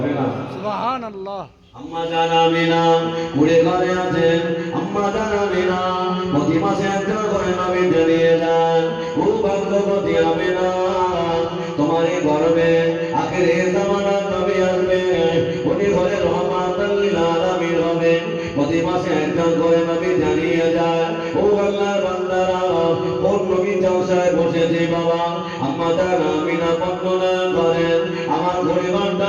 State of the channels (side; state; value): both; identical; correlation 1.00